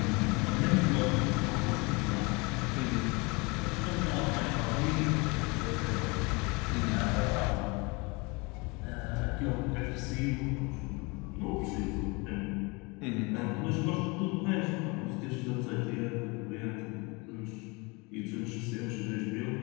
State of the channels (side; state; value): right; quieter; 27.6 dB